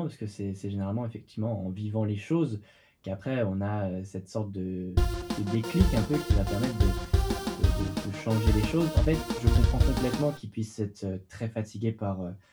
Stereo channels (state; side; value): identical; both; correlation 1.00